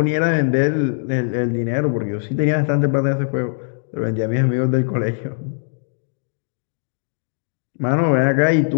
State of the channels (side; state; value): right; silent; digital silence